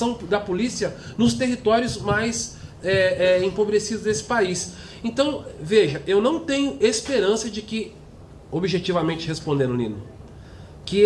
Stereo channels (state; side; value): identical; both; correlation 1.00